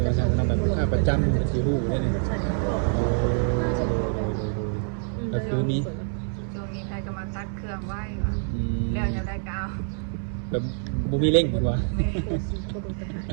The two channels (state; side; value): silent; left; 60 dB below the other